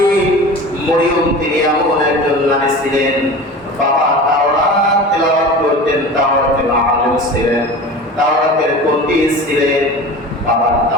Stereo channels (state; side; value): normal; both; correlation 0.35